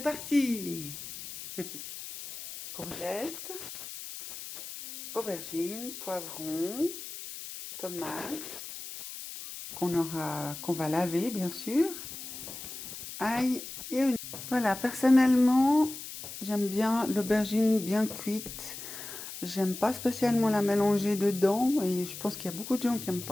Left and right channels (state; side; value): noise; left; hiss, 10 dB below the sound